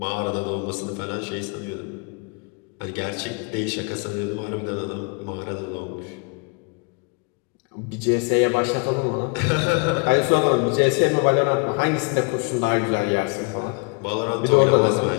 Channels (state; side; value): quieter; right; 33.3 dB